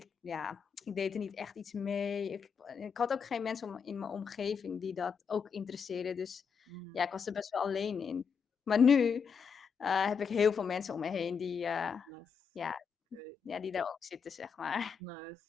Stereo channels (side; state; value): right; quieter; 6.3 dB